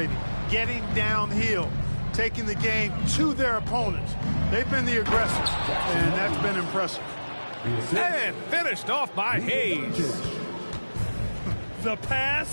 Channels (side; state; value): both; inverted; correlation -1.00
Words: getting downhill, taking the game to their opponents. They've been the aggressors, and that's been impressive. And finished off by Hayes. The